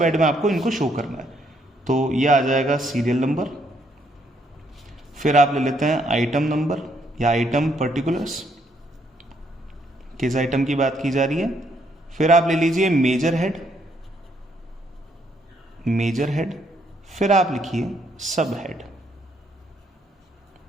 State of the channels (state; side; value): normal; both; correlation 0.71